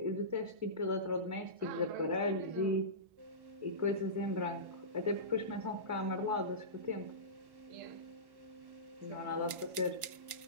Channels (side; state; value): left; late; 1.5 ms